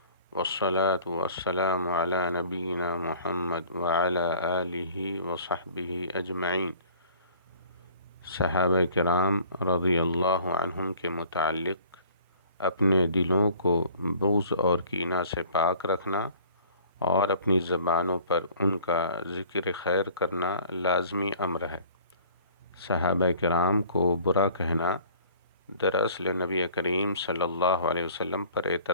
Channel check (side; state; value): both; inverted; correlation -0.51